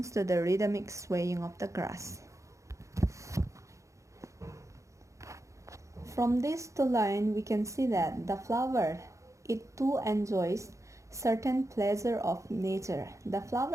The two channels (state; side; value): late; left; 0.15 ms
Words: to the rhythmic swaying of the grass. From this two line we can see that the flower it too enjoys certain pleasure of nature. The